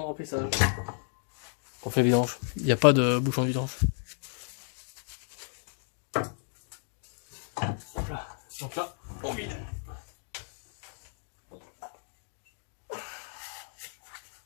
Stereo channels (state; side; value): silent; right; digital silence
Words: remplissage. On fait vidange. Il n'y a pas de bouchon de vidange. Voilà. Donc là, on vide.